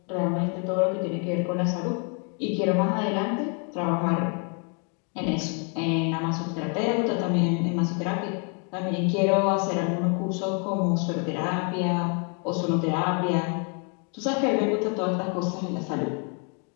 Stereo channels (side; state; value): right; quieter; 38.4 dB